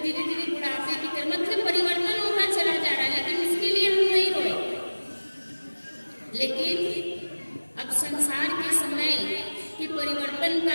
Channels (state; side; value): inverted; both; correlation -1.00